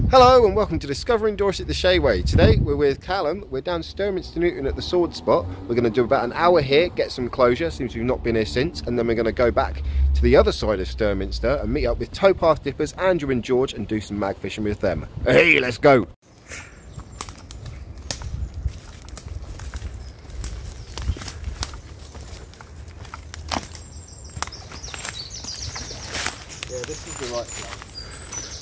Hello and welcome to Discovering Dorset the Shayway. Today we're with Callum. We're down Sturminster Newton at the Sword Spot. We're going to do about an hour here, get some closure, seems we've not been here since, and then we're going to go back to the other side of Sturminster and meet up with towpath dippers Andrew and George and do some mag fishing with them. Hey, let's go! Yeah, this is the right place.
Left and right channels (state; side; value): identical; both; correlation 1.00